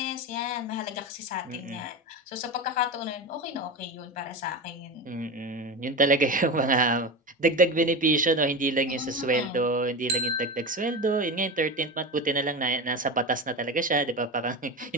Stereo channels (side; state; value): both; normal; correlation 0.22